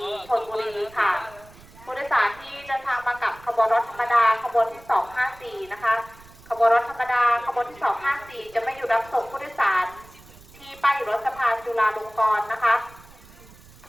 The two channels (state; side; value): noise; right; rumble, 23 dB below the sound